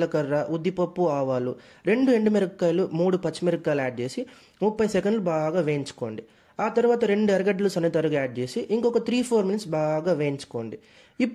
ఉద్దిపప్పు, ఆవాలు, 2 ఎండుమిరపకాయలు, 3 పచ్చిమిరపకాయలు యాడ్ చేసి 30 సెకండ్లు బాగా వేయించుకోండి. ఆ తర్వాత 2 ఎర్రగడ్డలు సన్నతరుగా యాడ్ చేసి ఇంకొక 3-4 మినిట్స్ బాగా వేయించుకోండి.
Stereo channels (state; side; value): identical; both; correlation 1.00